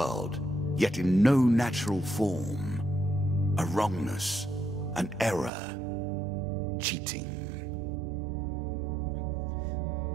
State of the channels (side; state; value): left; drops out; at 5.5 s